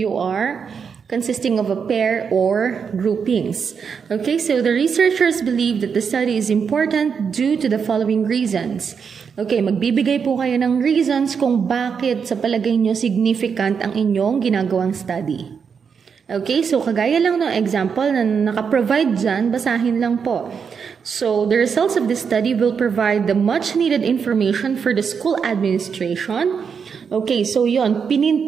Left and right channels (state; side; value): quieter; left; 6.4 dB